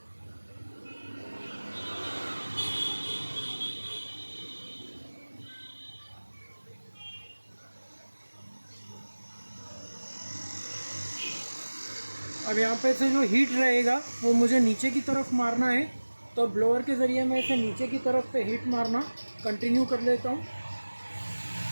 अब यहाँ पे से जो हीट रहेगा वो मुझे नीचे की तरफ मारना है। तो ब्लोअर के ज़रिए मैं इसे नीचे की तरफ पे हीट मारना कंटिन्यू कर लेता हूँ।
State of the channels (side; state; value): both; inverted; correlation -1.00